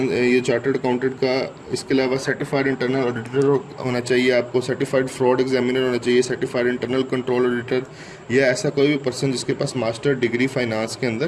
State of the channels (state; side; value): identical; both; correlation 1.00